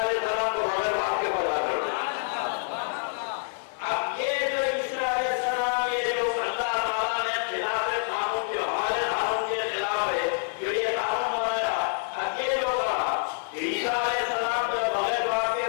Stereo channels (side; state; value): right; silent; 59 dB below the other